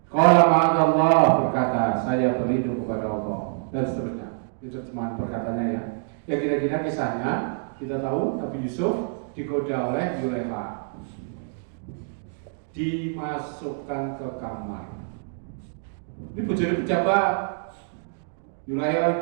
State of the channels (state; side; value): silent; left; digital silence